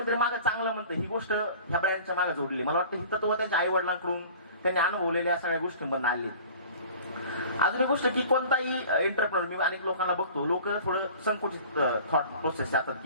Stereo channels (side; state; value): both; inverted; correlation -0.44